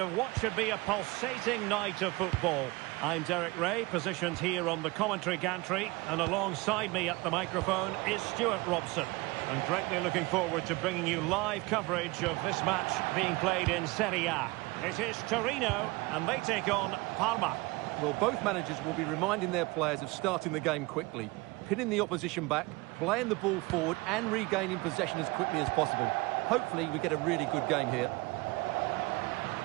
what should be a pulsating night of football. I'm Derek Ray, positioned here on the commentary gantry, and alongside me at the microphone is Stuart Robson. I'm greatly looking forward to bringing you live coverage of this match being played in Serie A. It is Torino, and they take on Parma. Well, both managers will be reminding their players of starting the game quickly, pinning the opposition back, playing the ball forward and regaining possession as quickly as possible. Hopefully we get a really good game here.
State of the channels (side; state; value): left; quieter; 23.5 dB